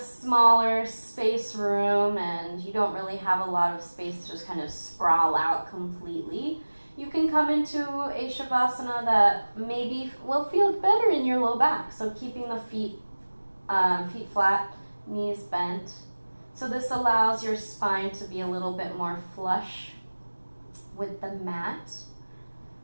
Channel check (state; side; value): inverted; both; correlation -1.00